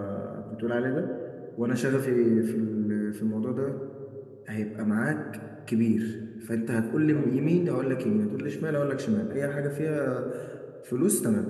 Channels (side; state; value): both; identical; correlation 1.00